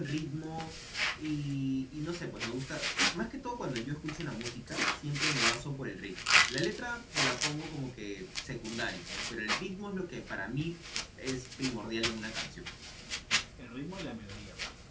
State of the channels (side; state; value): both; identical; correlation 1.00